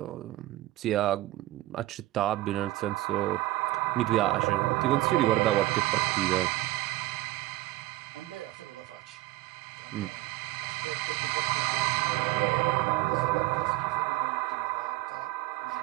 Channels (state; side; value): quieter; left; 17.2 dB